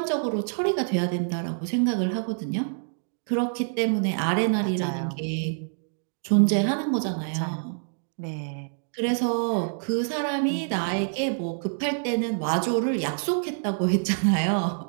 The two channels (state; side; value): silent; left; digital silence